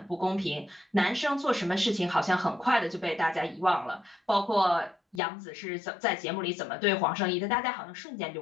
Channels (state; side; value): drops out; right; at 5.2 s